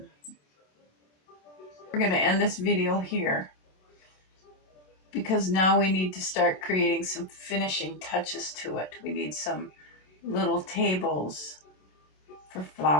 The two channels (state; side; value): late; right; 27 ms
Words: We're going to end this video here because now we need to start creating some finishing touches to it. We need some little tables for